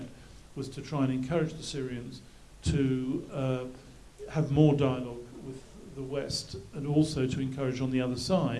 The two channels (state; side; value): identical; both; correlation 1.00